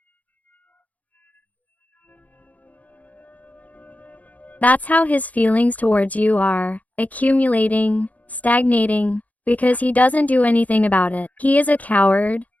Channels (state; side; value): late; right; 0.075 ms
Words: That's how his feelings towards you are, accumulating, stagnating, because he doesn't do anything about it. He is a coward,